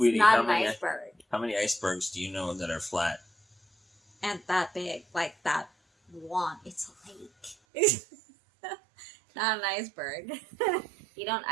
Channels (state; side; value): drops out; left; at 7.6 s